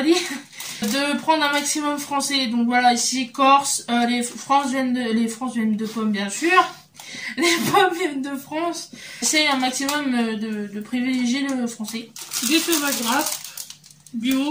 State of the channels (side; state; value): both; identical; correlation 1.00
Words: dit, de prendre un maximum français. Donc voilà, ici, Corse, les France viennent de pommes, bien sûr. Les pommes viennent de France. C'est un maximum de privilégier le français. Des tomates grasses,